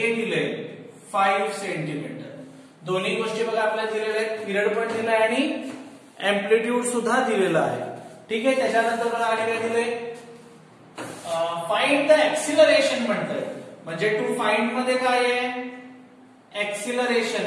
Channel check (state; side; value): identical; both; correlation 1.00